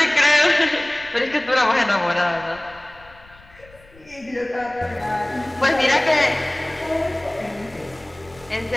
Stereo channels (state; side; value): noise; left; rumble, 25 dB below the sound